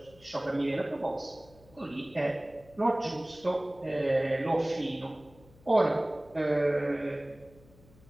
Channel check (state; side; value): noise; left; hum, 25 dB below the sound